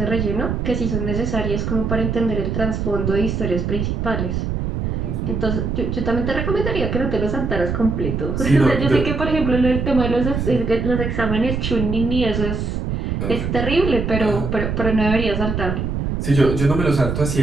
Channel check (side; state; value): right; noise; rumble, 2 dB below the sound